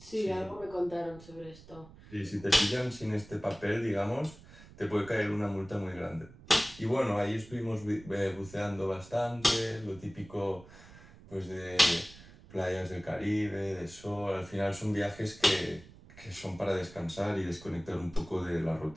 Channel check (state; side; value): noise; right; rumble, 20 dB below the sound